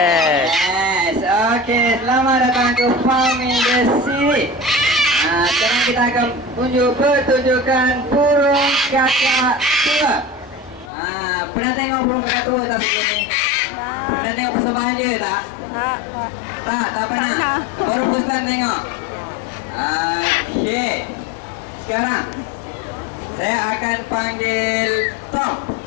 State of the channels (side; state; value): right; drops out; at 10.9 s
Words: Yes. Okey, selamat datang ke Farm Industry. Sekarang kita akan tunjuk pertunjukan burung kakak tua. Pernah tengok burung kakak tua tak sebelum ni? Pernah tengok persembahan dia tak? Tak pernah. Baru first time tengok. Okey. Sekarang saya akan panggil Tom.